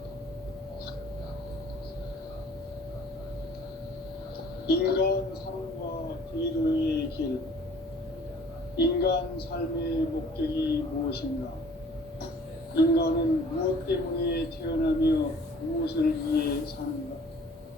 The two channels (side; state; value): both; normal; correlation 0.52